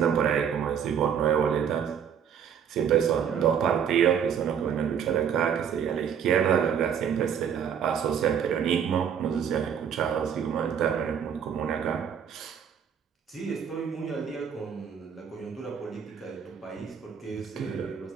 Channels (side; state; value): left; quieter; 8.0 dB